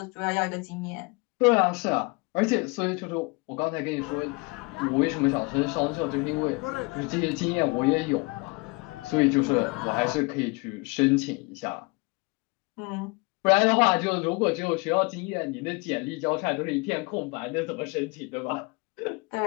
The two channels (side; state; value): right; quieter; 28.3 dB